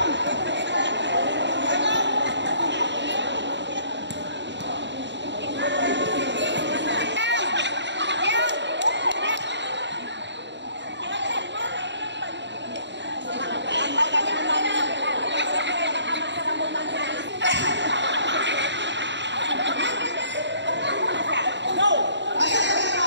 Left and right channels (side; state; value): left; late; 0.52 ms